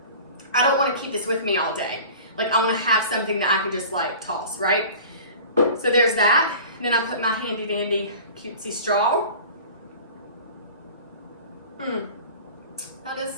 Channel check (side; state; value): both; inverted; correlation -0.41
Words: I don't want to keep this with me all day. Like I want to have something that I can just like toss, right? So there's that. And then I put my handy dandy cutesy straw. That is